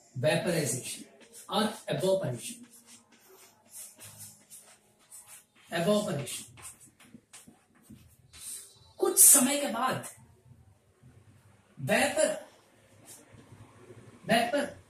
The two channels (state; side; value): identical; both; correlation 1.00